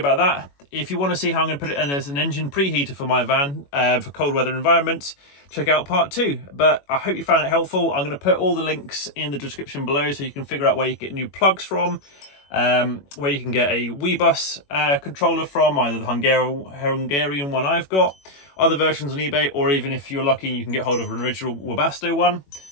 that. If you want to see how I'm going to put it in as an engine preheater for my van for cold weather environments, check out part 2. But I hope you found it helpful. I'm going to put all the links in the description below so you can figure out where you get new plugs from, where you can get a Webasto controller from, either the Hungarian one I've got, other versions on eBay, or even if you're lucky you can get hold of an original Webasto one.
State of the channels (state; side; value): late; right; 21 ms